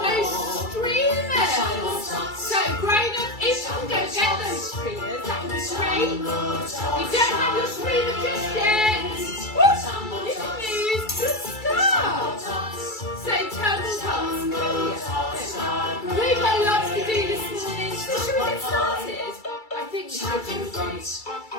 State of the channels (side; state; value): right; late; 2.3 ms